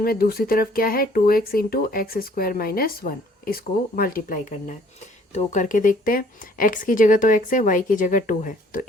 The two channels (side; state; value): both; normal; correlation 0.58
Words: में दूसरी तरफ क्या है, 2x into x square minus 1, इसको मल्टीप्लाई करना है। तो करके देखते हैं, x की जगह तो x है, y की जगह 2 है, तो